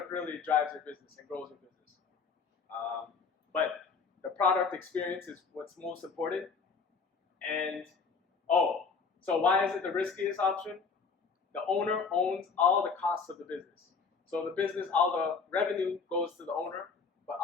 really drives your business and grows your business. But the product experience is what's most important. And so why is it the riskiest option? The owner owns all the costs of the business. So the business, all the revenue goes to the owner, but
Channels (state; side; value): quieter; right; 5.1 dB